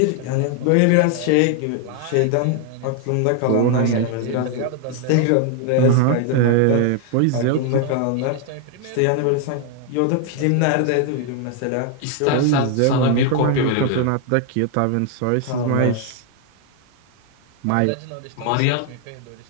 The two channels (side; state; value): both; different; correlation 0.00